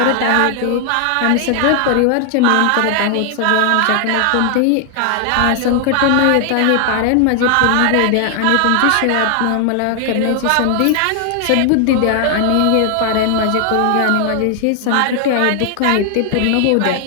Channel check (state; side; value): different; both; correlation 0.00